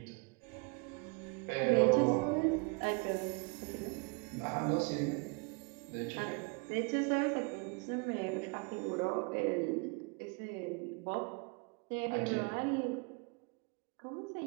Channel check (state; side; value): quieter; left; 32.3 dB